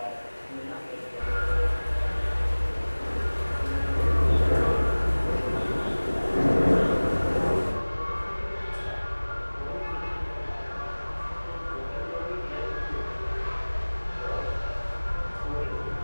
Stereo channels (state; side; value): inverted; both; correlation -1.00